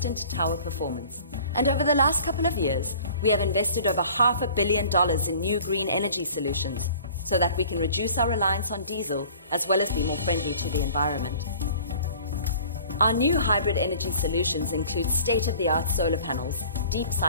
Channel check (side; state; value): both; inverted; correlation -0.48